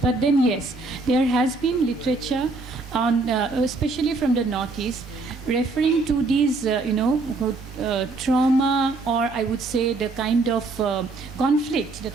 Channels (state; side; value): quieter; left; 3.5 dB